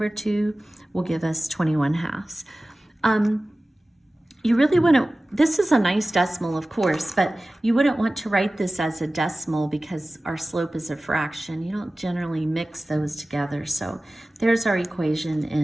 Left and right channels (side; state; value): both; normal; correlation 0.97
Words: 2 will give us 21/2. You really want to this is a nice decimal, of course, but you wouldn't want to write this as a decimal because our slope is a fraction. You don't generally mix those together. So there's our equation